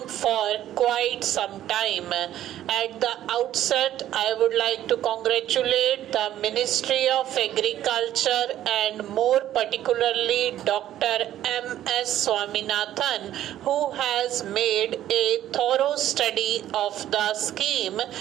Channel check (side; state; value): left; quieter; 12.3 dB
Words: for quite some time. At the outset, I would like to congratulate the Ministry of Agriculture and more particularly Dr. M.S. Swaminathan, who has made a thorough study of the scheme